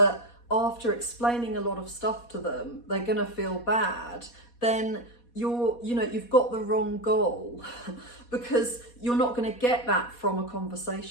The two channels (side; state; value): right; late; 4.2 ms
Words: after explaining a lot of stuff to them, they're gonna feel bad, then you've got the wrong goal, because you're not going to get that from a